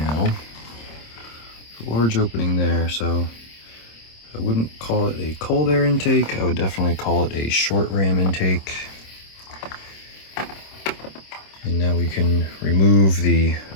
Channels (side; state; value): right; late; 26 ms